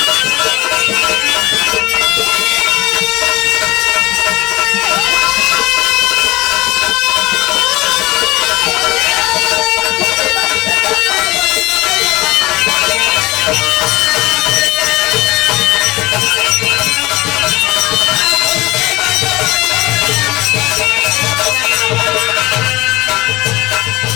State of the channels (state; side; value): quieter; right; 19.9 dB